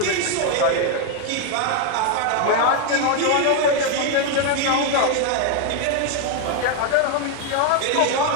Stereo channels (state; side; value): different; both; correlation 0.01